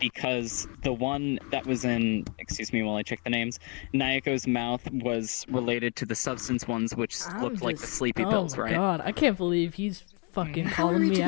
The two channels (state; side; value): quieter; right; 33.5 dB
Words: because the one that was in, excuse me while I check the names, Nayako's mouth was related to the substance ones, which looked like the sleepy pills, right? Oh my god, I can't believe he's fucking How are calling we me to be